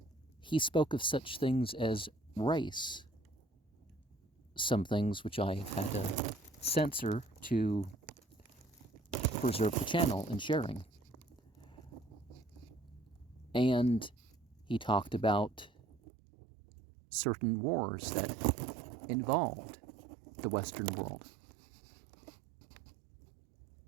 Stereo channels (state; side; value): drops out; left; at 16.0 s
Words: He spoke of such things as race, some things which I have had to censor to preserve the channel and sharing. And he talked about certain wars that involved the Western world.